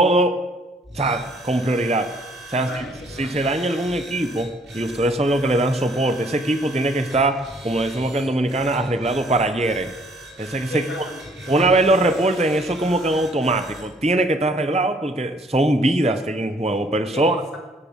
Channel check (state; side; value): normal; both; correlation 0.62